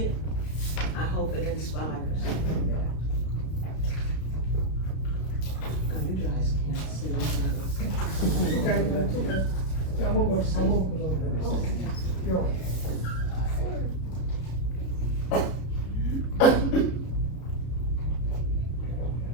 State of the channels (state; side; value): late; right; 33 ms